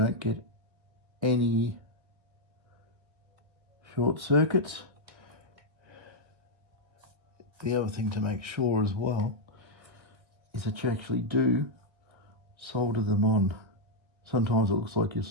get any short circuits. The other thing to make sure as well is that you actually do solder them on. Sometimes it looks like you're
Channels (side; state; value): left; late; 1.8 ms